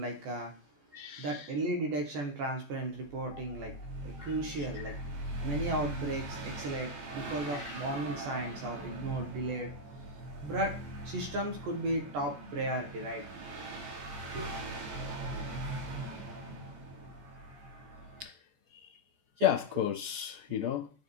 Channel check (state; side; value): late; left; 14 ms